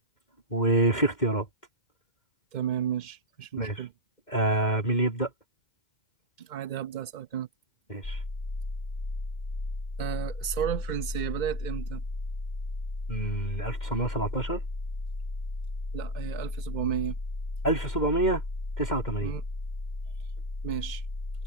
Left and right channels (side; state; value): right; late; 2.1 ms